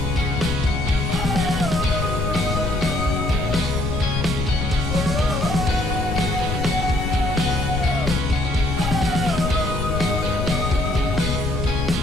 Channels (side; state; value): left; noise; rumble, 2 dB below the sound